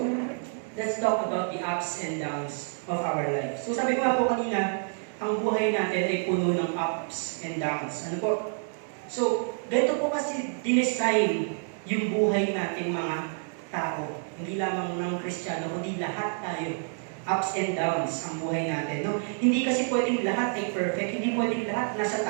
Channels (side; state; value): left; silent; 57 dB below the other